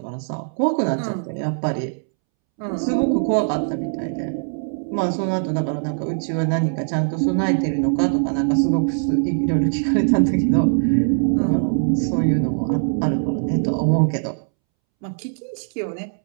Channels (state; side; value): silent; left; 65 dB below the other